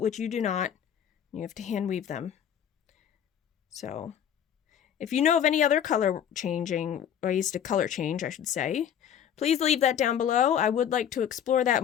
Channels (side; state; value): right; quieter; 9.3 dB